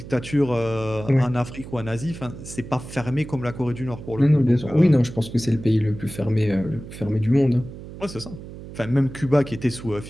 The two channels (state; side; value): noise; right; hum, 13 dB below the sound